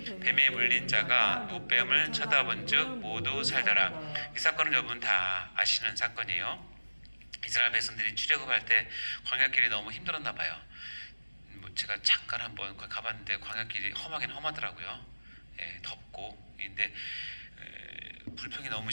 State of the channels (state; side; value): inverted; both; correlation -1.00